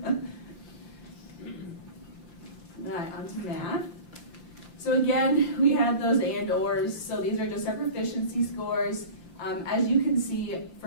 All right, on to math. So again, we had those and/ors. So these are just our proficiency scores. As you can see,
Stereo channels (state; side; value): late; right; 5.8 ms